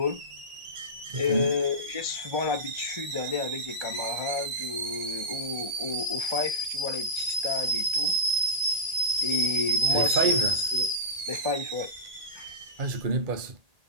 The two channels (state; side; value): late; left; 1.8 ms